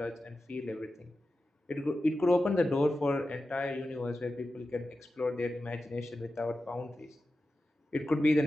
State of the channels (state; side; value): normal; both; correlation 0.92